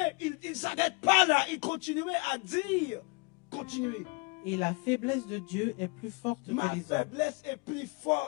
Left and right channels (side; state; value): right; quieter; 29.4 dB